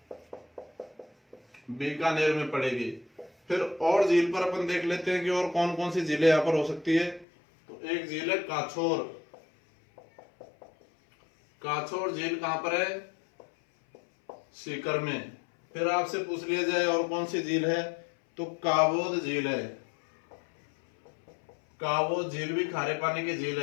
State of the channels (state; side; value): drops out; right; at 7.2 s